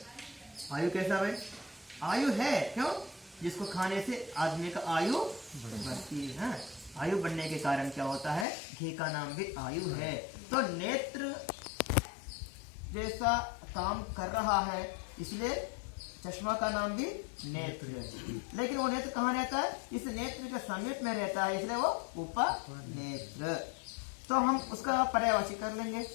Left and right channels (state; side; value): drops out; right; at 8.5 s